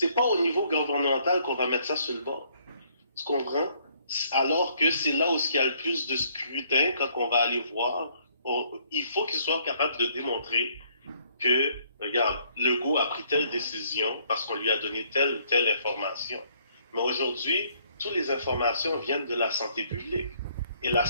pas au niveau gouvernemental qu'on va mettre ça sur le bord. Tu comprends? Alors que c'est là où il y a le plus de scrutin quand on va aller voir. Il faut qu'il soit capable de démontrer que, regarde, Legault a pris telle décision parce qu'on lui a donné telle ou telle information. Mais aujourd'hui, toutes les informations viennent de la santé publique. Et la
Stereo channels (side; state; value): both; inverted; correlation -0.66